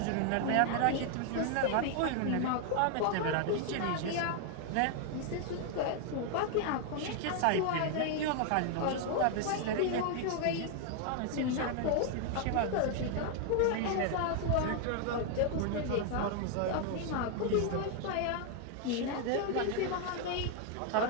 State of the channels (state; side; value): different; both; correlation 0.00